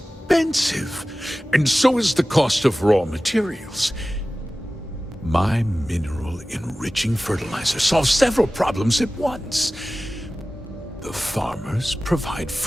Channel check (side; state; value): both; normal; correlation 0.96